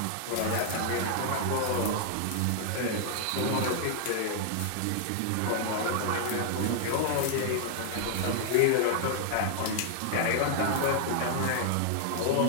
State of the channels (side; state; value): both; different; correlation -0.01